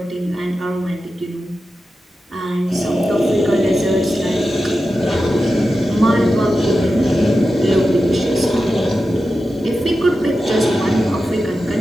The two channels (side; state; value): both; normal; correlation 0.91